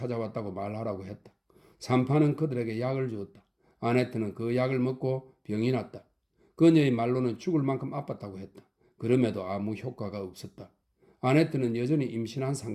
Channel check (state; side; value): identical; both; correlation 1.00